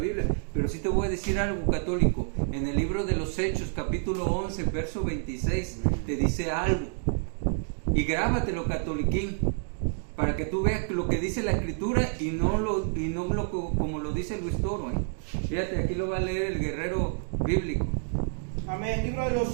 Pero sí te voy a decir algo, católico. En el libro de los Hechos, capítulo 11, verso 26, te dice algo. Y grábatelo, catoliquín, para que tú veas lo que dice la Escritura y no como lo dice Luis Toro. Fíjate, aquí lo va a leer el guerrero bíblico. Amén. Libro de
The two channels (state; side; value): silent; left; 59 dB below the other